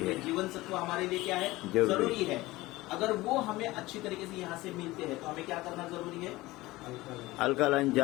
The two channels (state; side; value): quieter; right; 19.2 dB